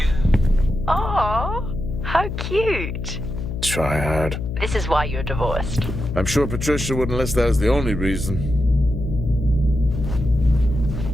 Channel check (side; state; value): left; noise; hum, 5 dB below the sound